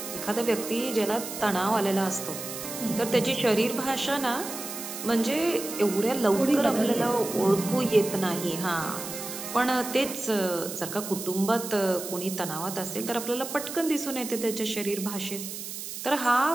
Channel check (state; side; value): noise; right; hiss, 8 dB below the sound